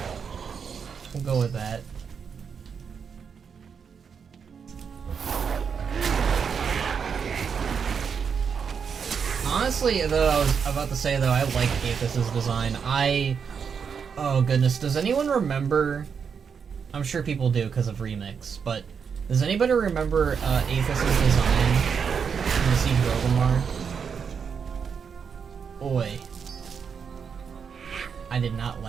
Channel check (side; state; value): left; quieter; 6.5 dB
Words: Honestly, though, I was about to say, though, I like Aethys' design. Oh goodness, does anyone remember... I'm sure people do because of Remix, but does anybody remember Aethys' design in the Siege of Orgrimmar? Oi. I did not